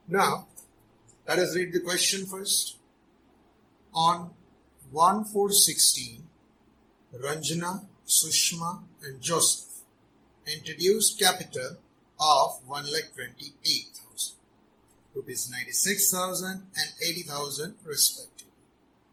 Now let us read the question first. On 1/4/16, Ranjana, Sushma and Joseph introduced capital of 1,28,000, rupees 96,000 and 80,000 respectively,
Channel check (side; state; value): both; identical; correlation 1.00